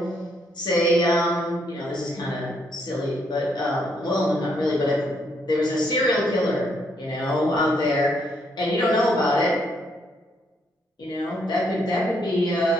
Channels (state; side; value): normal; both; correlation 0.73